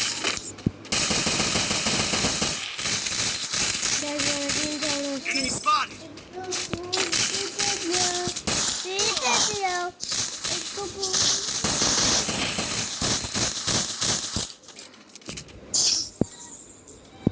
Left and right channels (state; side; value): identical; both; correlation 1.00